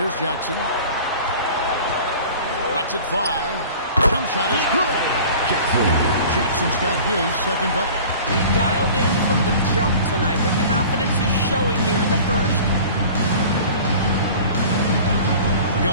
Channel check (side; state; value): both; inverted; correlation -0.42